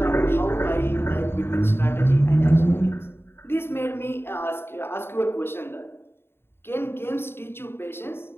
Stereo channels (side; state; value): right; late; 0.11 ms